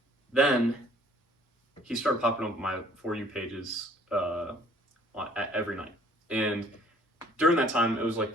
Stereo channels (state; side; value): normal; both; correlation 0.57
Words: Then he started popping up on my For You pages every night, and during that time, it was like